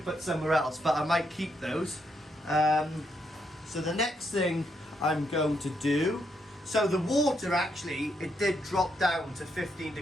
put somewhere else, but I might keep those. So the next thing I'm going to do, so the water actually, it did drop down to 15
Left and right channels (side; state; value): both; normal; correlation 0.78